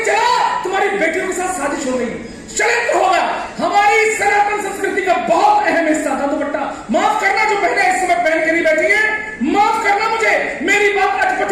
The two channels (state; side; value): identical; both; correlation 1.00